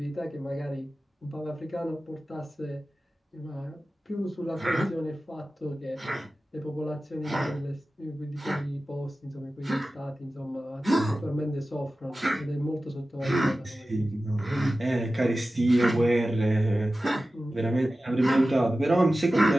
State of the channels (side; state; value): both; normal; correlation 0.95